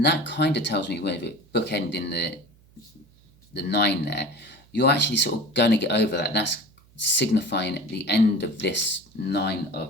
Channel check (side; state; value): right; noise; hum, 29 dB below the sound